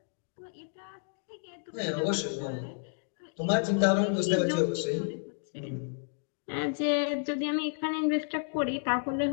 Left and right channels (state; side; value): silent; right; digital silence